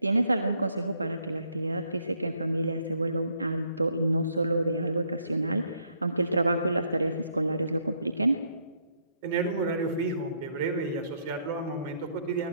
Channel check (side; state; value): both; inverted; correlation -0.70